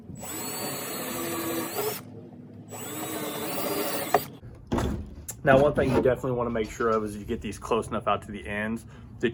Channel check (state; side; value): identical; both; correlation 1.00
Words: Now, one thing you definitely want to make sure of is you get these close enough out to the ends